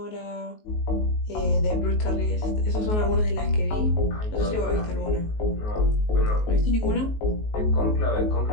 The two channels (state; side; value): late; right; 19 ms